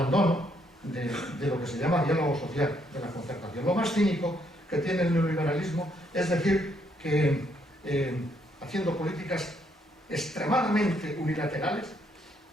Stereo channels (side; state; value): both; normal; correlation 0.72